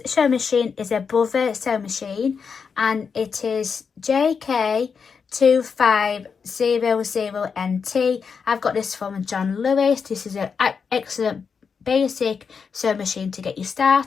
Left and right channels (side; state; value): right; quieter; 5.9 dB